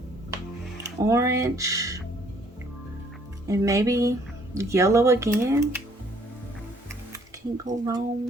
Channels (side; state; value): both; normal; correlation 0.62